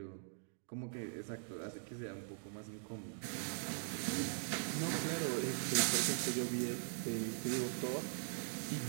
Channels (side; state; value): left; silent; digital silence